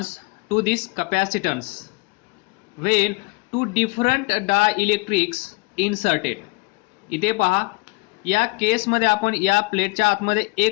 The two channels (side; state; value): right; quieter; 27.0 dB